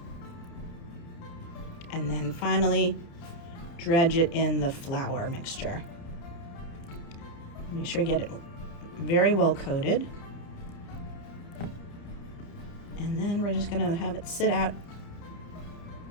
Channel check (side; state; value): right; late; 29 ms